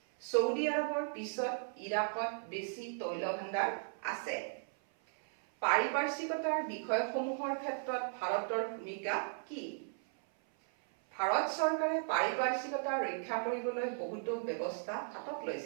ছৌদি আৰবৰ পিছত ইৰাকত বেছি তৈল ভাণ্ডাৰ আছে। পাৰিপাৰ্শ্বিকতাৰ বিষয়সমূহৰ ক্ষেত্ৰত ভাৰতৰ ভূমিকা কি? ভাৰত চৰকাৰে পাৰিপাৰ্শ্বিকতা ৰক্ষা কৰিবলৈ বহুতো ব্যৱস্থা হাতত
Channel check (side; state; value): left; silent; 54 dB below the other